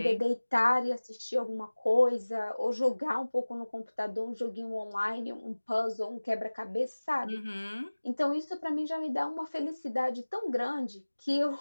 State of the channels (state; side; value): inverted; both; correlation -1.00